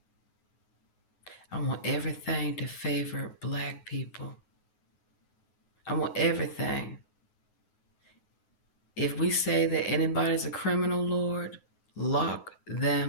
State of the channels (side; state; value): right; late; 9.4 ms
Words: I want everything to favor black people. I want everything. If we say that anybody's a criminal, Lord, lock